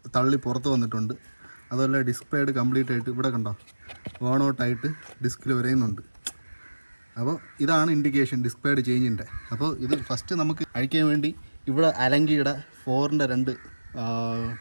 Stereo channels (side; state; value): both; inverted; correlation -1.00